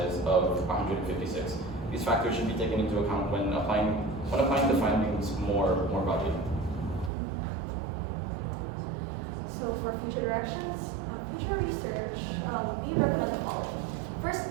of 156. These factors should be taken into account when applying the findings more broadly. So for future directions, future research, we recommend the following.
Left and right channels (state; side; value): drops out; left; at 7.1 s